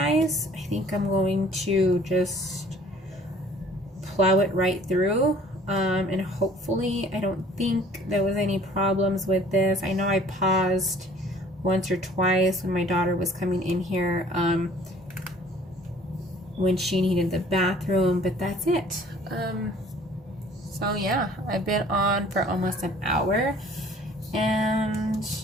I think I'm going to just plow it right through. And hopefully, I don't think there was any problems with this. I know I paused once or twice when my daughter was coming in here, when she needed the bathroom, but that's it. So yeah, I've been on for almost an hour, and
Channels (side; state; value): both; normal; correlation 0.54